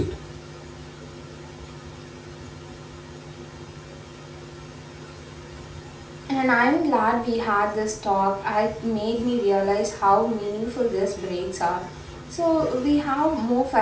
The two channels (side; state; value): both; identical; correlation 1.00